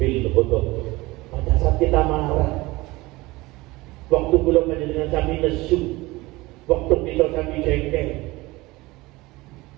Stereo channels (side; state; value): left; quieter; 21.0 dB